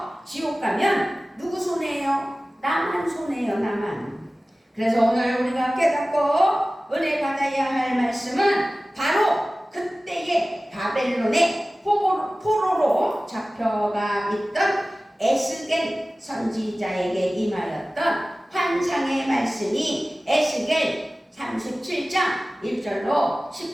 지옥 가면 누구 손해예요? 나만 손해예요, 나만. 그래서 오늘 우리가 깨닫고 은혜 받아야 할 말씀은 바로 그때의 바벨론의 포로로 잡혀가 있던 에스겔 선지자에게 임하였던 환상의 말씀이 에스겔 37장 1절로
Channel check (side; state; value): both; normal; correlation 0.97